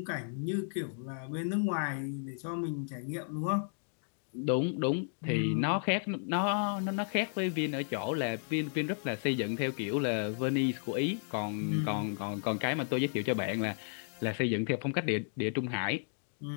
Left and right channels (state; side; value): silent; right; digital silence